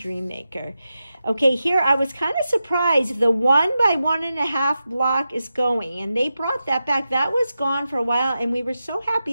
Okay, here I was kind of surprised. The 1 by 1.5 block is going, and they brought that back. That was gone for a while, and we were so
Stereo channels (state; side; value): inverted; both; correlation -0.90